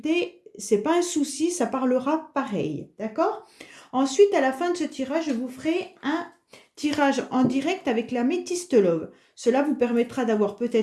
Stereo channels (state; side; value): identical; both; correlation 1.00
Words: c'est pas un souci, ça parlera pareil, d'accord? Ensuite, à la fin de ce tirage, je vous ferai un tirage en direct avec la métiste love. Cela vous permettra d'avoir